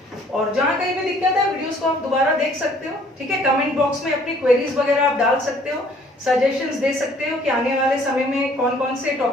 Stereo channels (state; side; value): normal; both; correlation 0.58